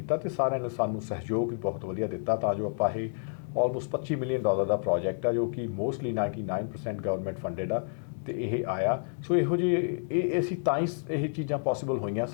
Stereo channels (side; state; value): right; silent; 58 dB below the other